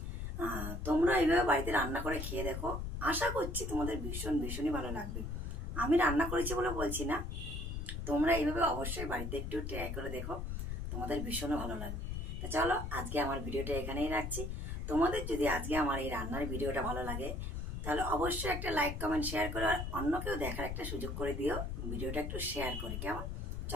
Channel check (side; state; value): left; noise; rumble, 4 dB below the sound